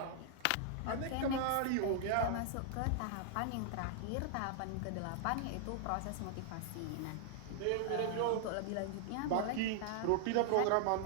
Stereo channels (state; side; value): different; both; correlation 0.00